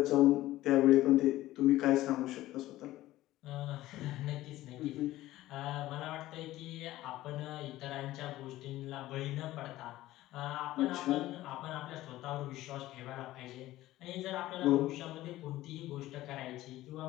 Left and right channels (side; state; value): right; quieter; 15.9 dB